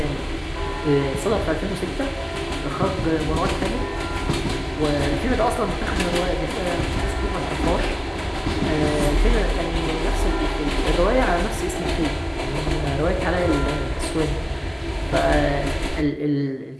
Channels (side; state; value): both; identical; correlation 1.00